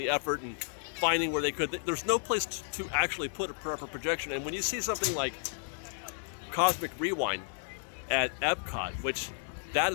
effort and finding where they could. There's no place to actually put a proper projection. And when you see something like Cosmic Rewind at Epcot, which that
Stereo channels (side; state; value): right; silent; 56 dB below the other